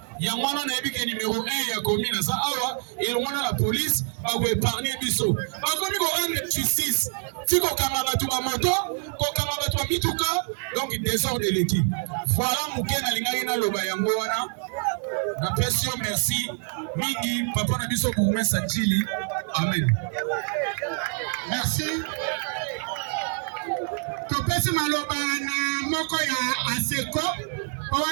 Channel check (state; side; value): silent; left; 55 dB below the other